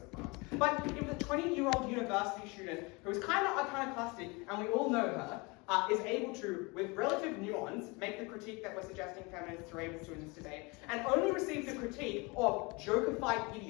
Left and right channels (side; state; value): right; quieter; 27.4 dB